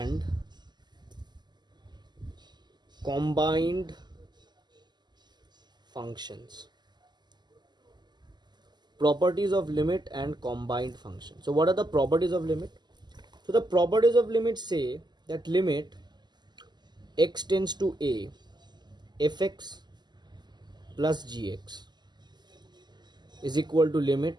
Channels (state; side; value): late; left; 0.21 ms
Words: combined functions. Properties of limit and combined function. So what are the properties of limit? So the properties of limit say that limit x tends to a fx plus gx is equal to